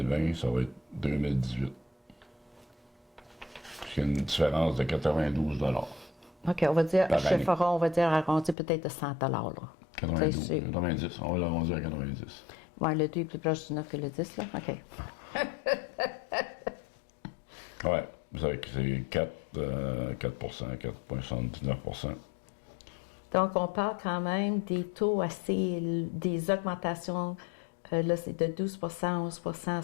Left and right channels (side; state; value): right; drops out; at 8.6 s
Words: ça va être 2018. C'est une différence de 92 OK, on va dire, Par chez année. Fora, on va dire arrondi peut-être de 100 là. 92, C'est- 90. On va l'arrondir à 90. Ouais, le 2 est plus proche du 9 que le 10, là. OK. Ouais, vous savez que c'est 4, 4,79 Donc, on parle quand même des taux assez, des augmentations. Là, c'est de 12 11